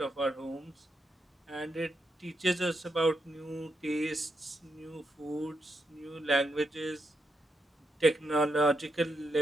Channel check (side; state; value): both; normal; correlation 0.83